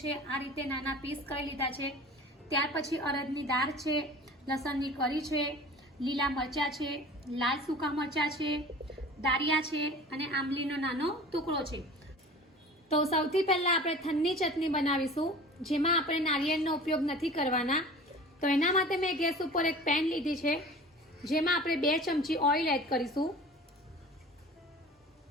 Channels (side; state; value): both; normal; correlation 0.41